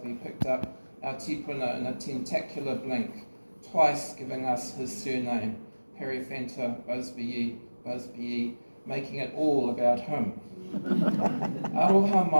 picked up our tipuna in a tentacular blink, twice giving us his surname, Periphanta Busby, making it all about him. Aroha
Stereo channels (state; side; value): inverted; both; correlation -1.00